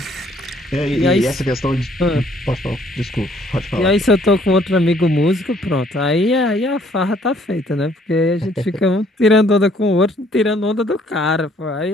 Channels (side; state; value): both; normal; correlation 0.62